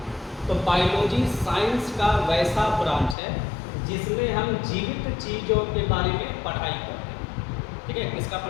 तो बायोलॉजी साइंस का वैसा ब्रांच है जिसमें हम जीवित चीज़ों के बारे में पढ़ाई करते हैं। ठीक है, किसका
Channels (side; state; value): right; drops out; at 3.2 s